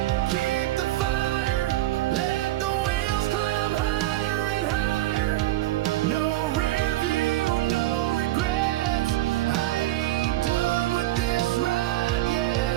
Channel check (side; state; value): left; quieter; 16.0 dB